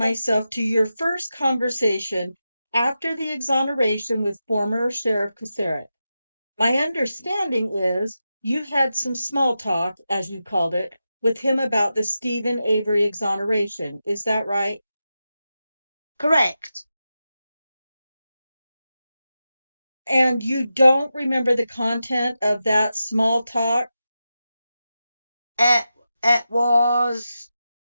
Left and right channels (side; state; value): both; inverted; correlation -0.91